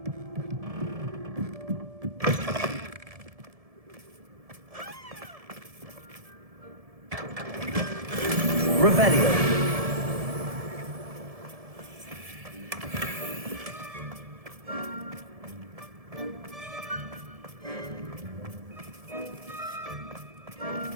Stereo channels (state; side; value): late; left; 1.7 ms